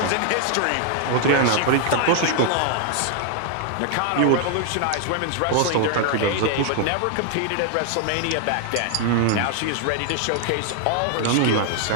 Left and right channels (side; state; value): both; different; correlation 0.00